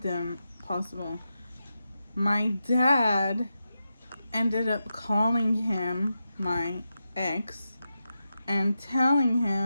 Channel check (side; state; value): both; inverted; correlation -0.89